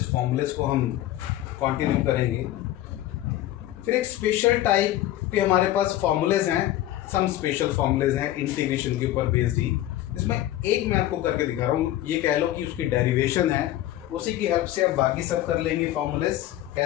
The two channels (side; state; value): right; quieter; 14.1 dB